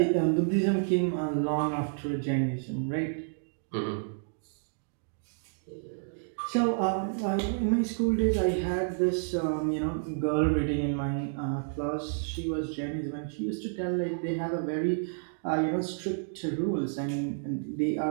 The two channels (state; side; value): silent; left; digital silence